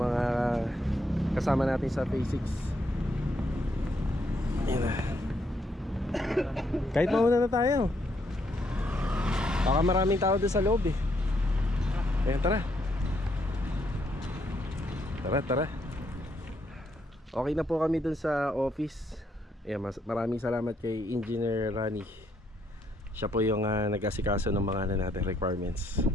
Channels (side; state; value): both; normal; correlation 0.74